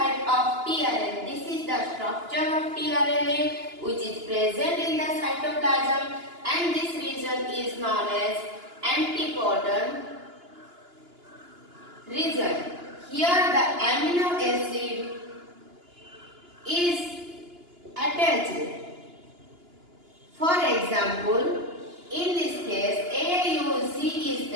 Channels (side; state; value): left; late; 2.9 ms